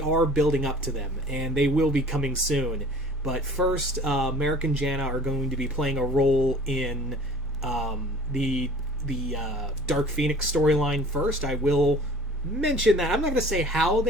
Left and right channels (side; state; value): both; normal; correlation 0.47